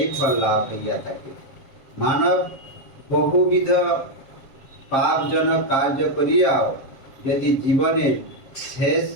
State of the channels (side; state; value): right; late; 7.5 ms